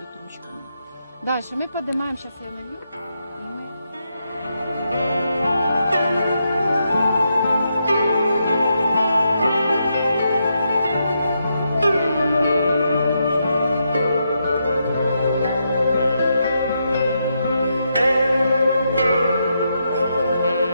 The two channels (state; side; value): inverted; both; correlation -0.82